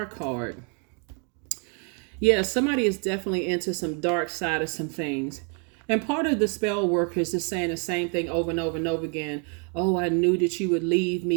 card. Yeah, somebody is definitely into some dark side of some things. And part of the spell work is just saying the same thing over and over and over again. Oh, I knew that you would leave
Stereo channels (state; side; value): quieter; left; 38.8 dB